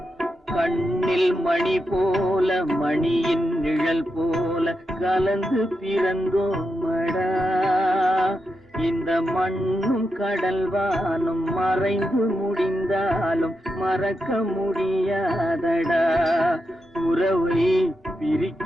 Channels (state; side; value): normal; both; correlation 0.86